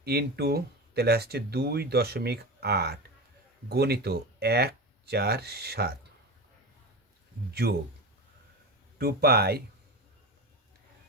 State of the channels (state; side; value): normal; both; correlation 0.24